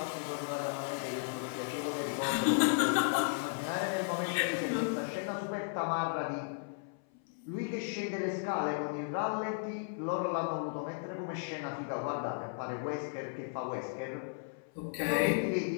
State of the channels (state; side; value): silent; right; 54 dB below the other